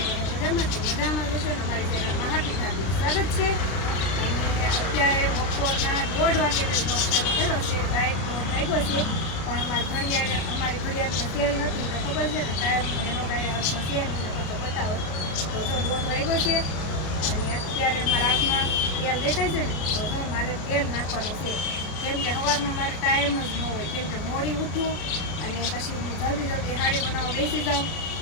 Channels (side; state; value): right; late; 33 ms